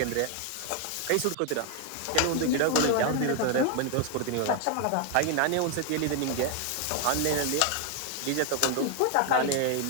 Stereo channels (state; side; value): different; both; correlation 0.01